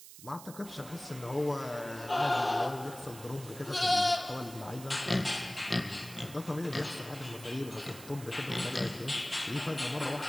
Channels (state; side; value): noise; right; hiss, 15 dB below the sound